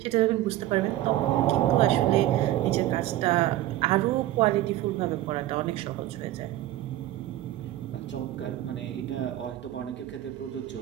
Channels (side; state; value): left; quieter; 14.5 dB